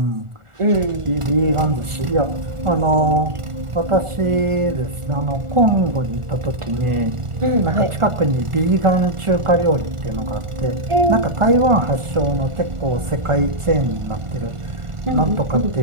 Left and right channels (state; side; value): late; left; 1.4 ms